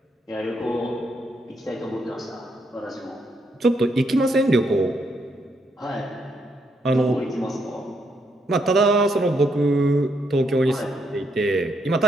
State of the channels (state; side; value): normal; both; correlation 0.76